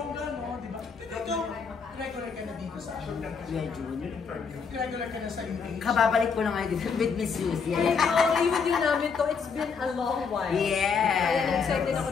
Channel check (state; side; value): quieter; right; 5.7 dB